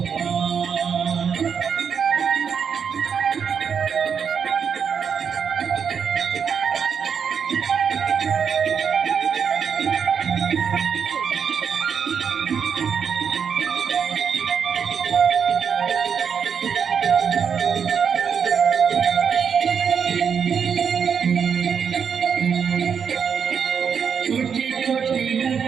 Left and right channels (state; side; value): quieter; left; 6.9 dB